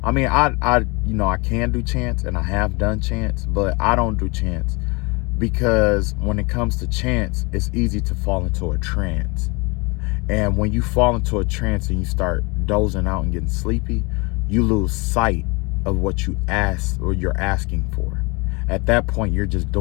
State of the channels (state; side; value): quieter; right; 27.7 dB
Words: can do chants and I have done chants, but I don't do chants because when it comes to chants, it's easy to fall into a trance. And when you fall into a trance and you start dozing out and getting sleepy, you lose sight of what you ask or you're asking for. At that point, you're just